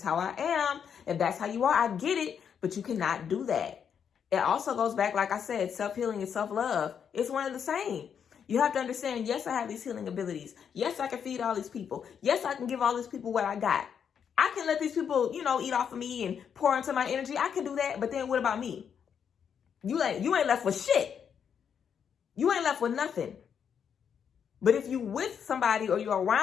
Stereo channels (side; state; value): right; quieter; 7.6 dB